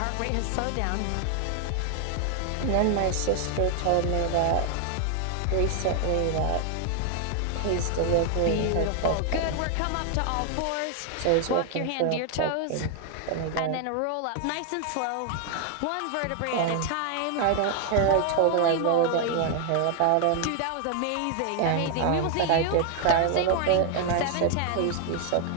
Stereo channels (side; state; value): both; different; correlation 0.00